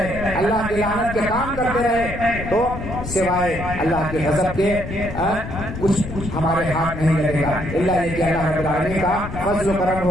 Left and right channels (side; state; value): left; noise; rumble, 9 dB below the sound